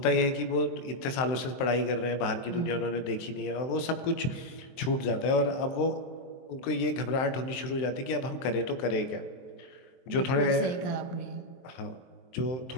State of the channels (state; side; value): late; right; 23 ms